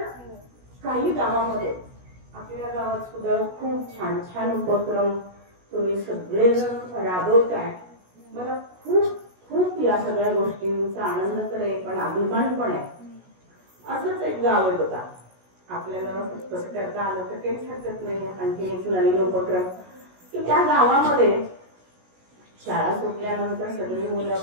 काही गावामध्ये, आपल्या गावात सुद्धा खूप छान छान उपक्रम तुम्ही सगळेजण राबवताय। मला खूप खूप या सगळ्या गोष्टींचा आनंद तर आहे, पण अभिमान पण आहे। असंच एक गाव आहे बघा, आपल्याला कसं करता आलं तर काहीच हरकत नाही। आणखी एक नवीन उपक्रम की त्या गावामध्ये शाळा सुटल्यानंतर सगळी मुलं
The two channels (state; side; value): late; left; 16 ms